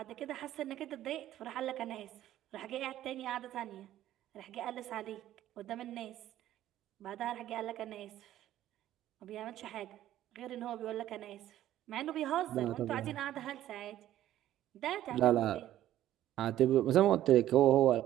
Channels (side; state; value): left; quieter; 13.0 dB